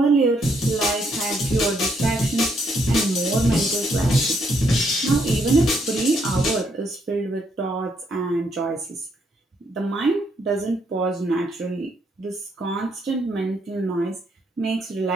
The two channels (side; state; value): both; normal; correlation 0.73